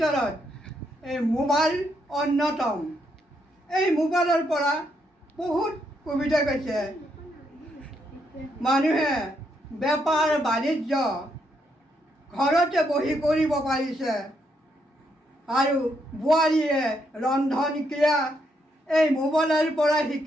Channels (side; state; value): both; normal; correlation 0.77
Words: এই মোবাইল অন্যতম। এই মোবাইলৰ পৰা বহুত সুবিধা পাইছে। মানুহে বেপাৰ বাণিজ্য ঘৰতে বহি কৰিব পাৰিছে আৰু বোৱাৰীয়ে ৰন্ধন ক্ৰিয়া এই মোবাইলৰ পৰা